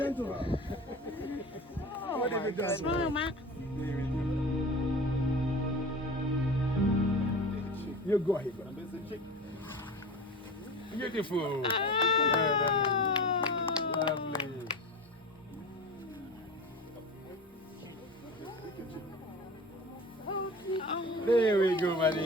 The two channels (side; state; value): both; normal; correlation 0.34